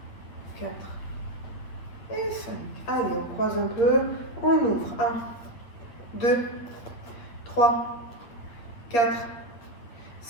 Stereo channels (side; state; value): right; late; 8.8 ms